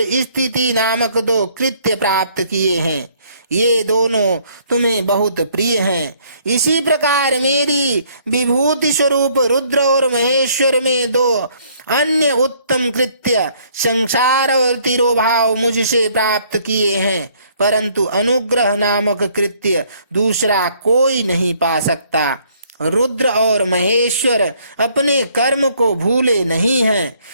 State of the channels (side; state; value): both; inverted; correlation -0.64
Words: स्थिति नामक 2 कृत्य प्राप्त किए हैं। ये दोनों तुम्हें बहुत प्रिय हैं। इसी प्रकार मेरी विभूति स्वरूप रुद्र और महेश्वर में 2 अन्य उत्तम कृत्य संसार और तिरोभाव मुझसे प्राप्त किए हैं, परंतु अनुग्रह नामक कृत्य दूसरा कोई नहीं पा सकता। रुद्र और महेश्वर अपने कर्म को भूले नहीं हैं,